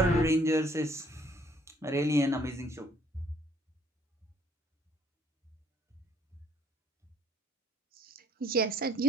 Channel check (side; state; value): both; normal; correlation 0.62